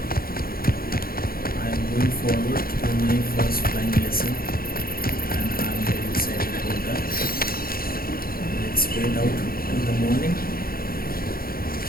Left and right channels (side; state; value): right; late; 0.43 ms